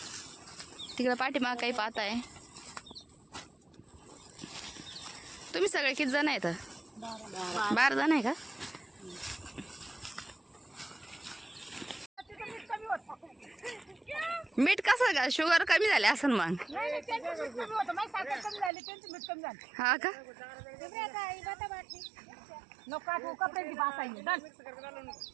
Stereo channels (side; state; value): left; drops out; at 18.7 s